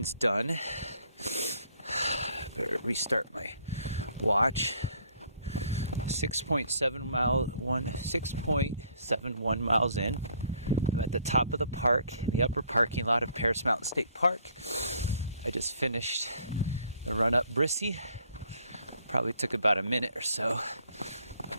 done. Better restart my watch. 6.71 miles in. I'm at the top of the park in the upper parking lot of Paris Mountain State Park. I just finished the run up Brissy. Probably took about a minute or so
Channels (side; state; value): both; inverted; correlation -0.62